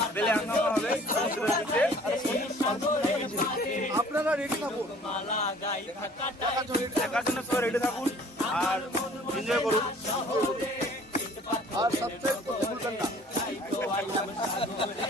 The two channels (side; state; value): both; normal; correlation 0.51